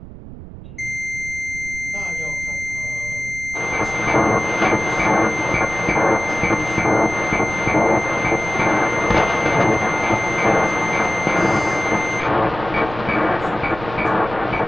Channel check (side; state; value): right; noise; rumble, 14 dB below the sound